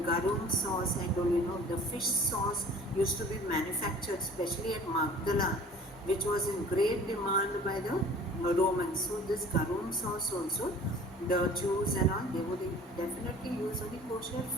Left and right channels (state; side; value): normal; both; correlation 0.47